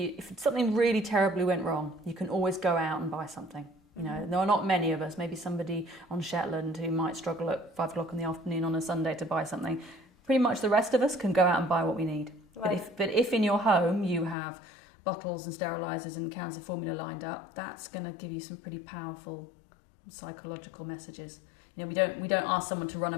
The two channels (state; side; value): drops out; right; at 14.4 s